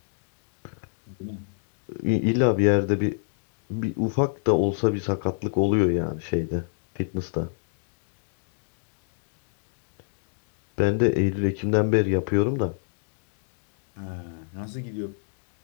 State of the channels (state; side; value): silent; right; digital silence